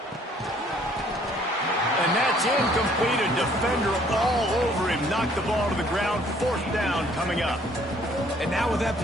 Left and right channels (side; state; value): both; normal; correlation 0.60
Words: And that's incomplete. A defender all over him. Knocked the ball to the ground. Fourth down coming up. And now with that